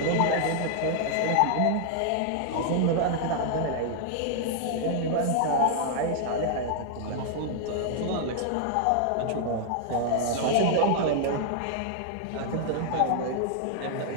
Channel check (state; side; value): different; both; correlation 0.00